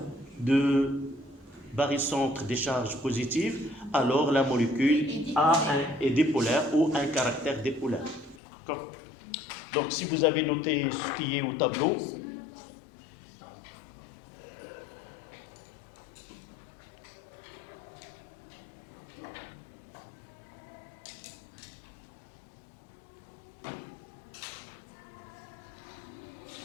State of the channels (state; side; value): drops out; right; at 8.4 s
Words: de barycentre des charges positives, alors la molécule est dipolaire ou un caractère dipolaire. D'accord? Donc, si vous avez noté ce qui est au tableau,